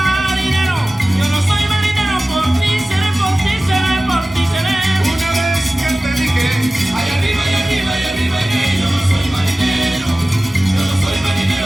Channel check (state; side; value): normal; both; correlation 0.96